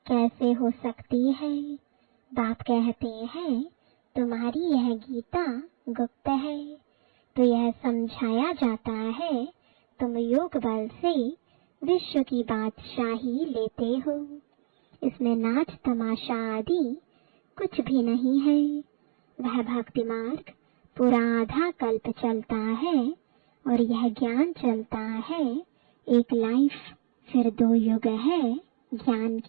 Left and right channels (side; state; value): left; silent; digital silence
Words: कैसे हो सकती है? बाप कहते हैं तुम्हारी यह गीता गुप्त है। तो यह समझाया जाता है तुम योग बल से विश्व की बादशाही लेते हो। इसमें नाच तमाशा आदि कुछ भी नहीं है। वह भक्ति मार्ग पूरा आधा कल्प चलता है और यह ज्ञान चलता है एक लाइफ, फिर 2 युग है ज्ञान